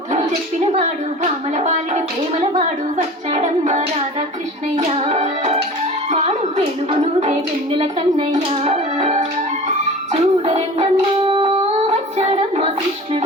చెప్పిన వాడు భామల పాలిడి ప్రేమల వాడు వచ్చాడమ్మ రాధాకృష్ణయ్య వాడు వెలుగునుదే వెన్నెల కన్నయ్య చూడరండమ్మా వచ్చాడమ్మ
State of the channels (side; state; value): both; normal; correlation 0.38